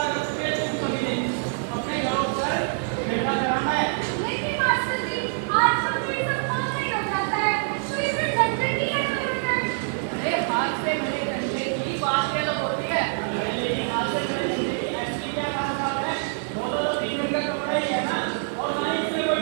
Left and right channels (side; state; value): left; silent; 61 dB below the other